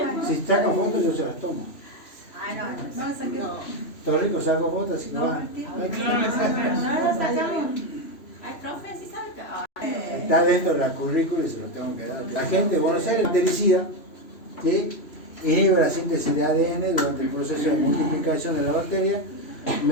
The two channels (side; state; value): right; late; 3.0 ms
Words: si saca fotos yo se las tomo. Ay, no, No, esa que... Doctor Rico saco fotos, así que No, va. Martín. no lo sacamos. Ay, profe, sí sabe que... Está dentro de la currícula y se lo tengo que dar. La gente de Buenos Aires bactericida, ¿sí? Inhibe la síntesis de ADN durante el proceso de multiplicación de la bacteria